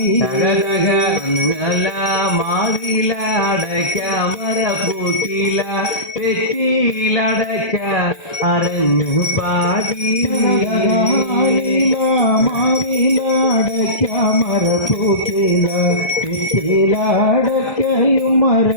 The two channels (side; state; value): right; late; 1.2 ms